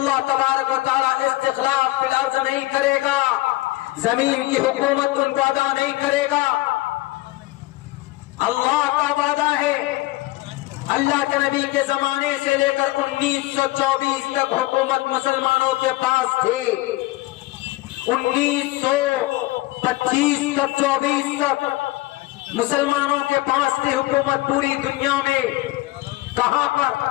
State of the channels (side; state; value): right; quieter; 19.3 dB